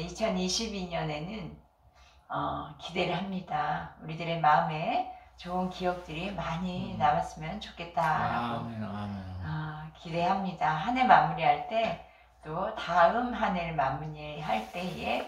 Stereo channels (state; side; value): identical; both; correlation 1.00